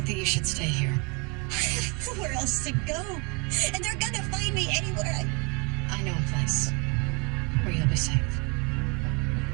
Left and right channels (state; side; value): quieter; left; 31.9 dB